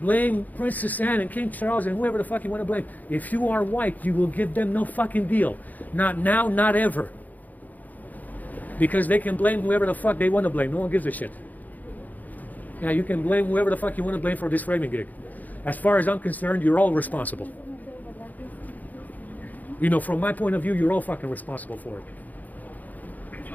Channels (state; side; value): late; right; 0.081 ms